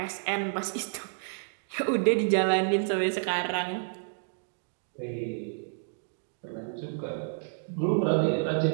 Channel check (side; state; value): left; silent; digital silence